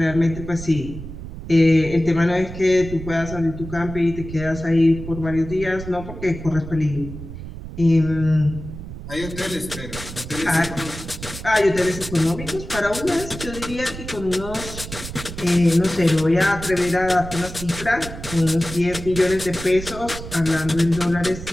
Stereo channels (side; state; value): right; noise; rumble, 11 dB below the sound